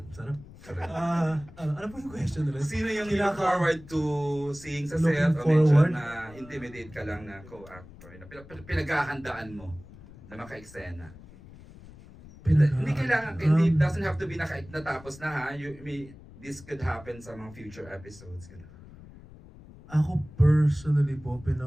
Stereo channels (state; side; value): noise; left; rumble, 19 dB below the sound